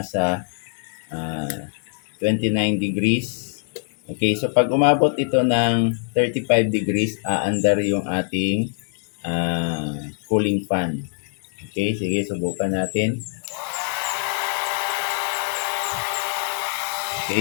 29 degrees. Okay, so pag umabot ito ng 35 degrees, aandar yung ating cooling fan. Okay, sige, subukan natin.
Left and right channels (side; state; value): right; silent; 63 dB below the other